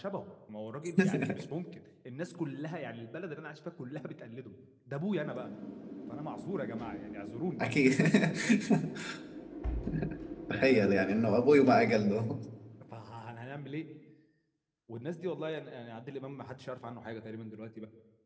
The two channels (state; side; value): identical; both; correlation 1.00